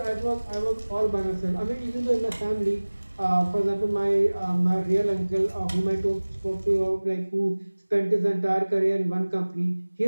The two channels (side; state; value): both; inverted; correlation -1.00